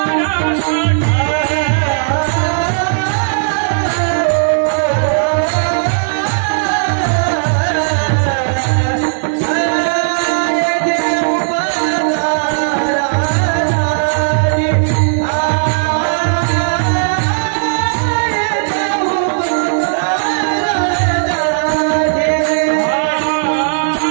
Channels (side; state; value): left; silent; digital silence